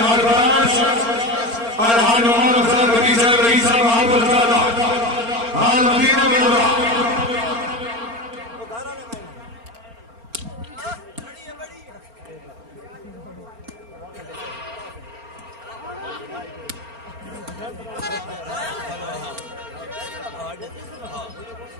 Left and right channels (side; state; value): left; late; 4.4 ms